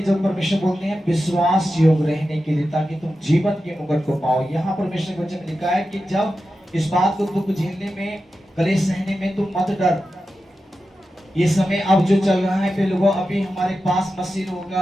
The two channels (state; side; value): normal; both; correlation 0.91